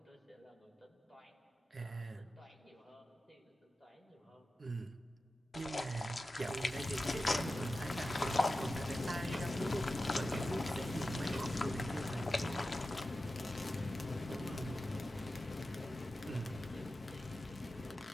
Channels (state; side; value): normal; both; correlation 0.93